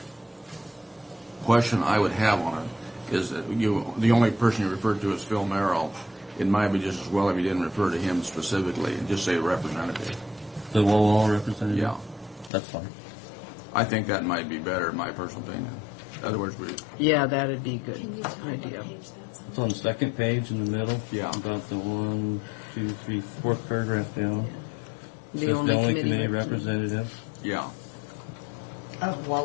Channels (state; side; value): drops out; right; at 12.5 s